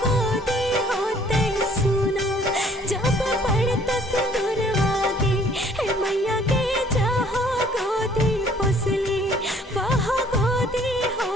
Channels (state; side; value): normal; both; correlation 0.59